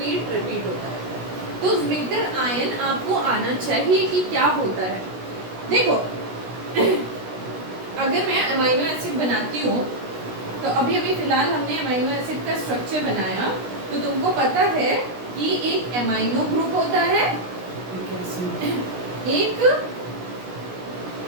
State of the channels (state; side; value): late; left; 16 ms